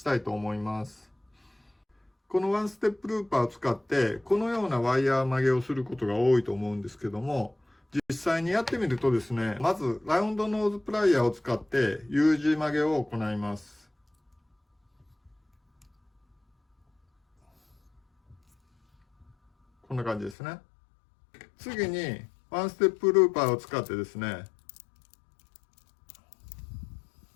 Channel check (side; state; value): right; drops out; at 20.4 s